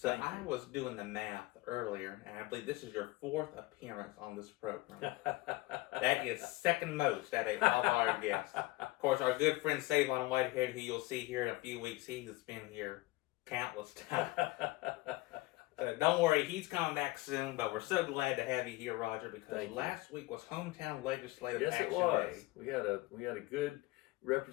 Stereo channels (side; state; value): right; quieter; 20.2 dB